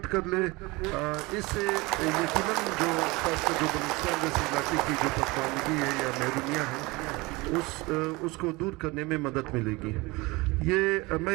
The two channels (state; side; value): quieter; left; 23.5 dB